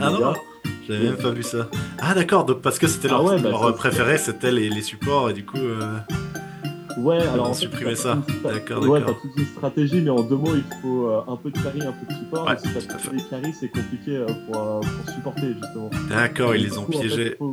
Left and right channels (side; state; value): both; identical; correlation 1.00